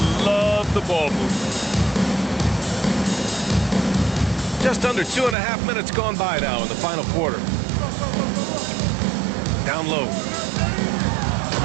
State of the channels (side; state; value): left; drops out; at 5.4 s